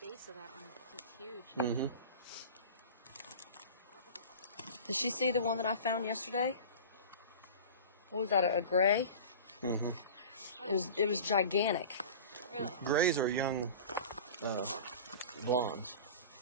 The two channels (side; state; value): both; inverted; correlation -0.36